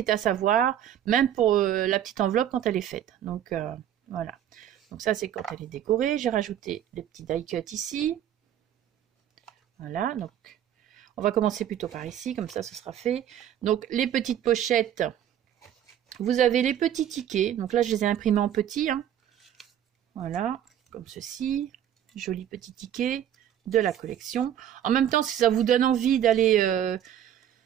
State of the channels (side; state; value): left; quieter; 10.5 dB